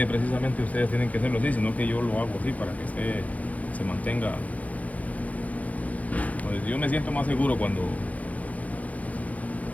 precisamente ustedes tienen que hacerlo así, sino que yo lo hago así para que se mantenga. Pues yo me siento más seguro cuando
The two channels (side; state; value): right; late; 0.071 ms